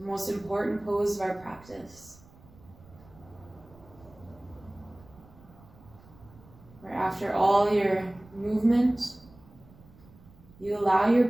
most important pose of our practice. Where after all your movement, you allow your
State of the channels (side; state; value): right; noise; rumble, 24 dB below the sound